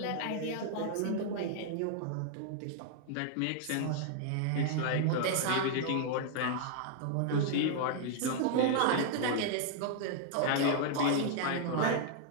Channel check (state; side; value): different; both; correlation -0.01